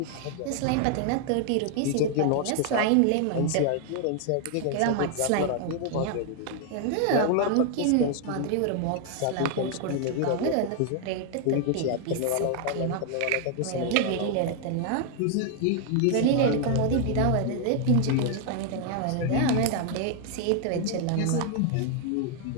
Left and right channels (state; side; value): different; both; correlation 0.00